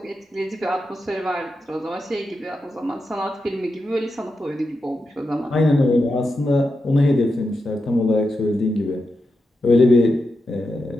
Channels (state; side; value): normal; both; correlation 0.88